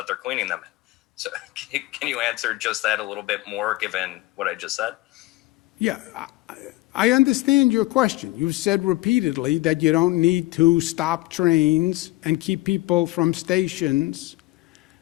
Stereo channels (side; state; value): right; quieter; 19.3 dB